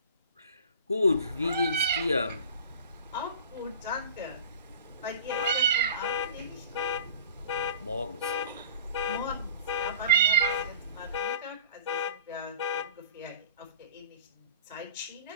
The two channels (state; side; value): inverted; both; correlation -0.41